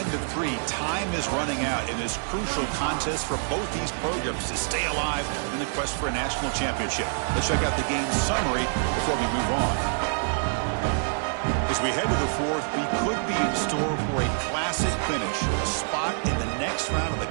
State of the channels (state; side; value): silent; left; digital silence